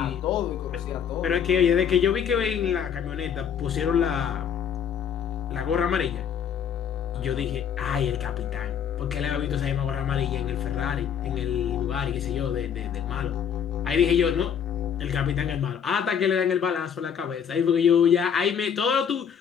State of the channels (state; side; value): quieter; right; 8.0 dB